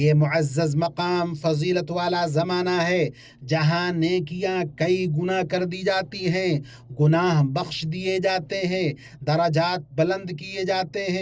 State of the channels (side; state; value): both; identical; correlation 1.00